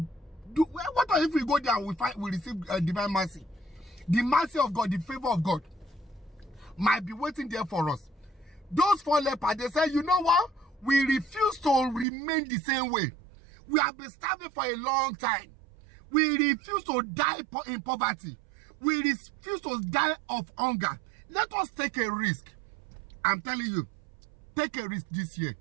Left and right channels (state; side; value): drops out; left; at 12.1 s